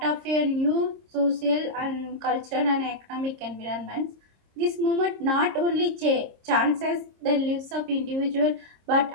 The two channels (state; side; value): late; left; 26 ms